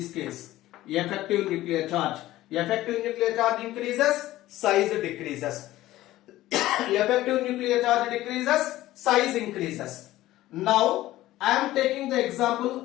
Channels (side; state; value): right; quieter; 15.8 dB